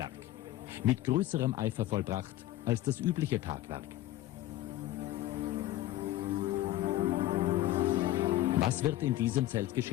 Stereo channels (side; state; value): right; quieter; 14.9 dB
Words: mit größerem Eifer vollbracht als das übliche Tatwerk. Was wird in diesem Zelt